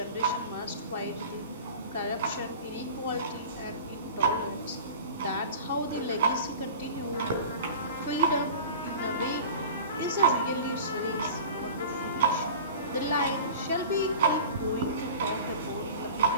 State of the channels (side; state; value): both; inverted; correlation -0.38